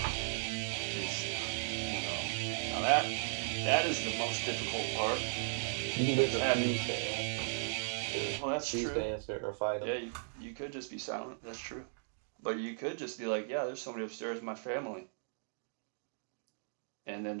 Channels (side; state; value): left; silent; digital silence